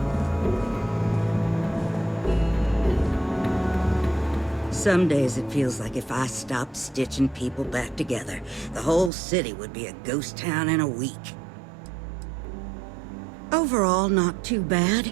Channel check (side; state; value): left; drops out; at 9.1 s